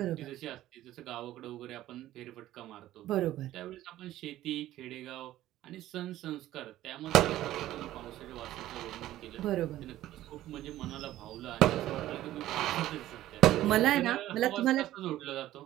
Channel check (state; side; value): quieter; left; 14.3 dB